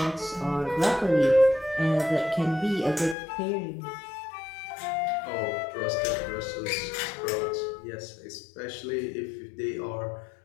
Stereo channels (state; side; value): drops out; right; at 3.2 s